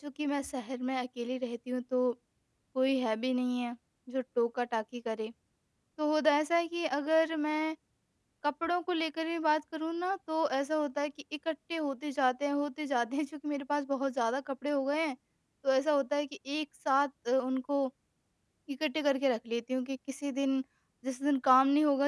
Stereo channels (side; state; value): both; identical; correlation 1.00